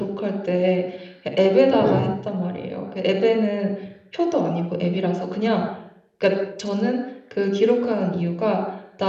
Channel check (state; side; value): identical; both; correlation 1.00